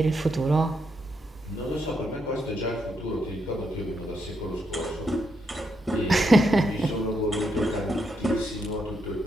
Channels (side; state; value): both; normal; correlation 0.80